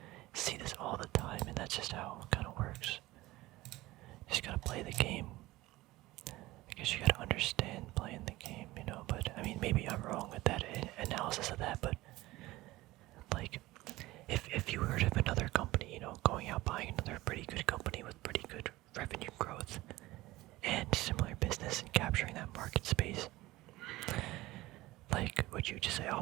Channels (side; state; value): left; quieter; 18.4 dB